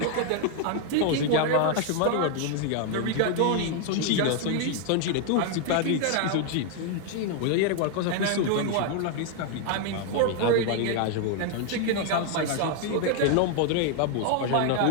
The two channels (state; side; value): different; both; correlation 0.00